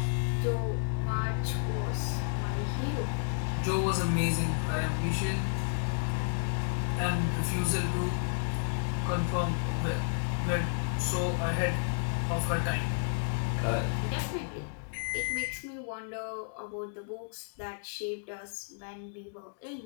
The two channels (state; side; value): silent; right; digital silence